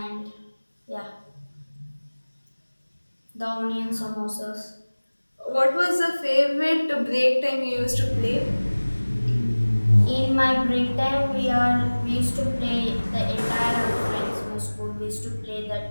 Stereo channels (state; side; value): inverted; both; correlation -1.00